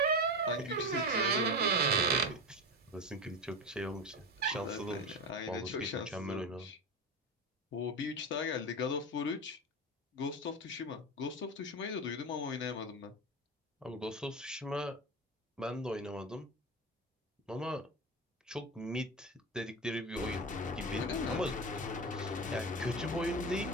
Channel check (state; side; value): normal; both; correlation 0.21